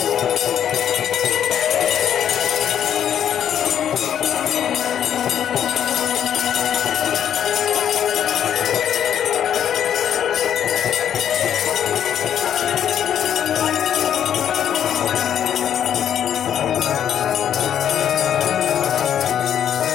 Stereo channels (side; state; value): right; quieter; 9.6 dB